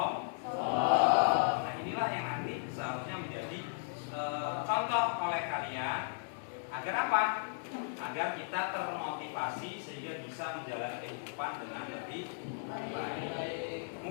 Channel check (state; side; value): silent; right; 54 dB below the other